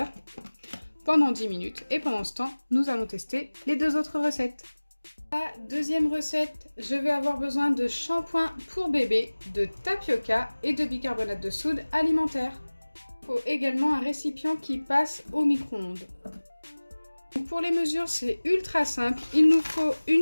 pendant 10 minutes. Et pendant ce temps, nous allons tester les deux autres recettes. La deuxième recette, je vais avoir besoin de shampoing pour bébé, de tapioca et de bicarbonate de soude alimentaire. Il faut également un récipient qui passe au micro-ondes. Pour les mesures, c'est ultra simple. Il nous faut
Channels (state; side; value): inverted; both; correlation -1.00